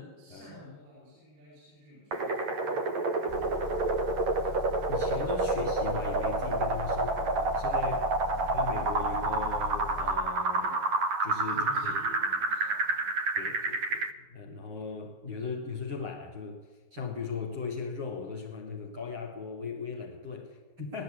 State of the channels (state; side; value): late; left; 9.8 ms